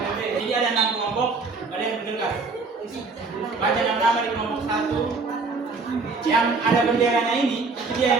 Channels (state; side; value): quieter; left; 4.1 dB